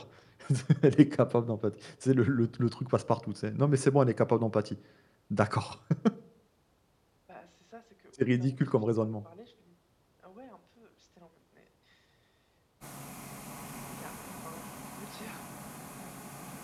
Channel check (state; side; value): identical; both; correlation 1.00